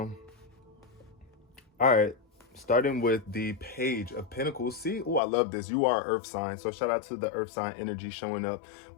all right, starting with the Page of Pentacles. See, oh, I love this. You are Earth sign. So shout out to the Earth sign energy showing up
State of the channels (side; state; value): right; drops out; at 5.2 s